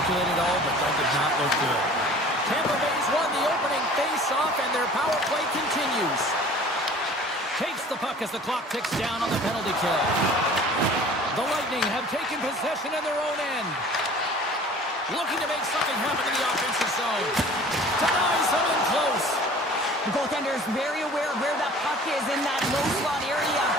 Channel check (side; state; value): both; normal; correlation 0.46